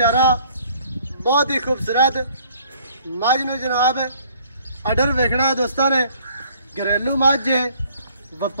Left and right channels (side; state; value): both; inverted; correlation -0.58